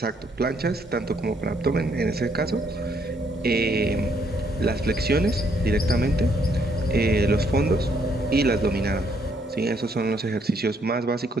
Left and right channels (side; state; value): both; normal; correlation 0.70